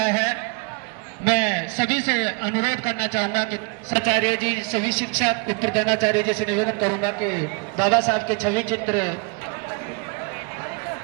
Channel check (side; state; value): left; quieter; 31.4 dB